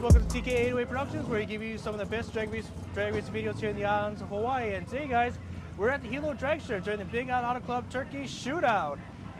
to TK808 Productions, where we give you some of the best drag race videos here in the islands of Hawaii. And today, guys, we're at the Hilo Dragstrip during the Big ALOHA Club Turkey Shootout.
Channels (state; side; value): identical; both; correlation 1.00